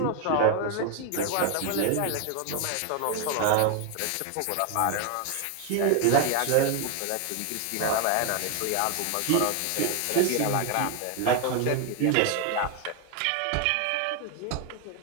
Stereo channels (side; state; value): both; different; correlation 0.01